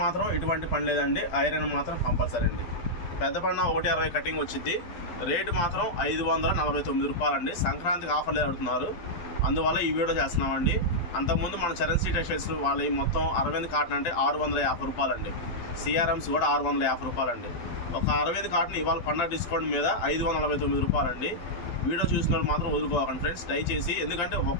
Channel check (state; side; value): late; right; 12 ms